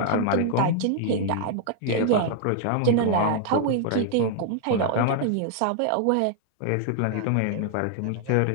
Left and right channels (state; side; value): different; both; correlation 0.00